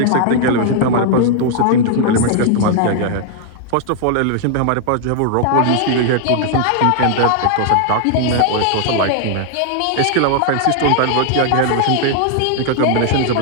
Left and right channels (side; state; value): both; different; correlation 0.00